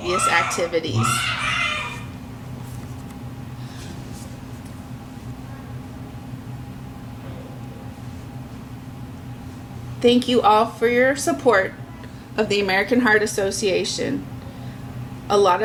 activities. Thank you all for your support of the American Heart Association. A lot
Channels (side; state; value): both; identical; correlation 1.00